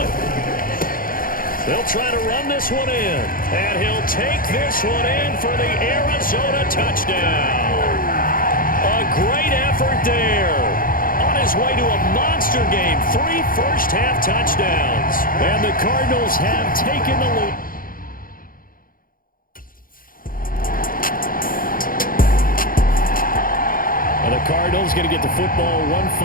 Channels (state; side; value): late; right; 0.41 ms